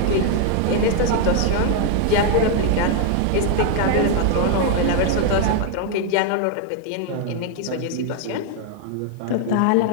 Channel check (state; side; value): different; both; correlation 0.00